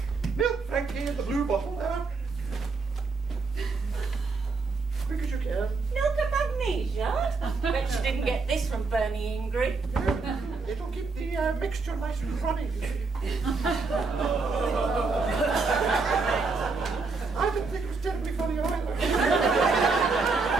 Milk, Frankie, in the blue bottle there. Quick as you can. Milk of magnesia? Bet she didn't get this from Bernie Ingrid. It'll keep the mixture nice and runny, you see. I didn't think it was terribly funny either.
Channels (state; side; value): quieter; left; 4.2 dB